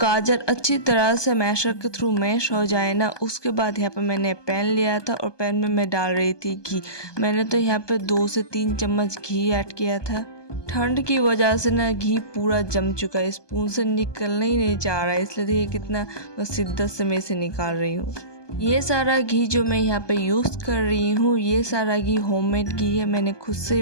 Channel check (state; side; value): late; right; 1.2 ms